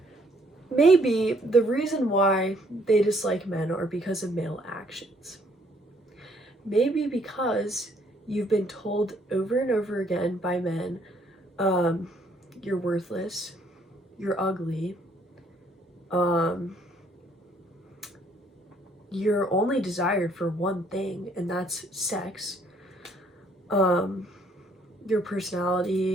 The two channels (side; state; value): both; normal; correlation 0.65